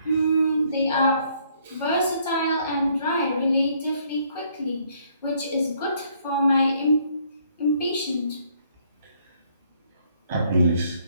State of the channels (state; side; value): inverted; both; correlation -0.67